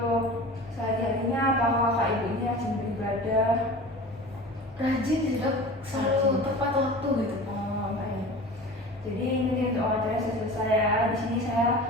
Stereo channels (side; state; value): both; normal; correlation 0.37